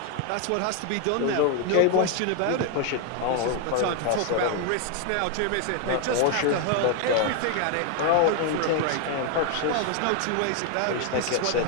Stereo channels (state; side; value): different; both; correlation 0.01